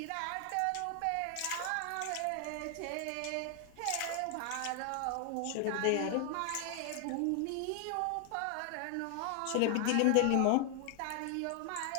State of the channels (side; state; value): both; different; correlation 0.00